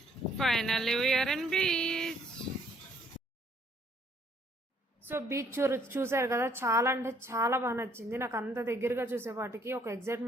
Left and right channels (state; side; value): normal; both; correlation 0.65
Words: Finally we are in beach. So beach చూసారు కదా, చాలా అంటే చాలా బాగా నచ్చింది నాకు. అంత దగ్గరగా చూసేపాటికి ఒక